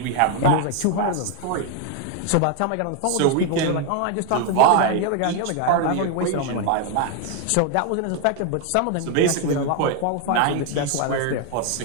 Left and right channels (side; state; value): both; different; correlation 0.00